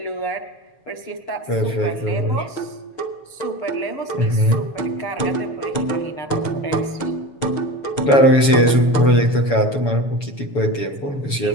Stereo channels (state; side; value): late; right; 7.1 ms